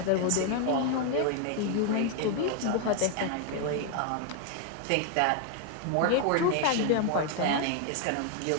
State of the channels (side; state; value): both; different; correlation 0.01